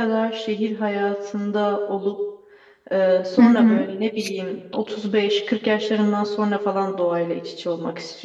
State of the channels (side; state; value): both; identical; correlation 1.00